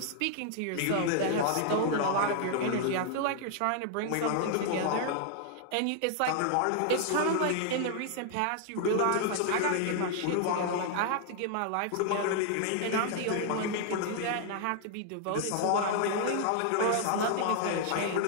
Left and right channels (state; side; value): different; both; correlation 0.00